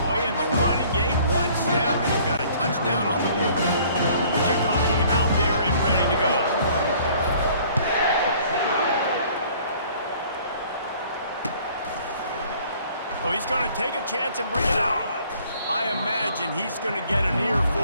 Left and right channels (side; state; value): both; inverted; correlation -0.56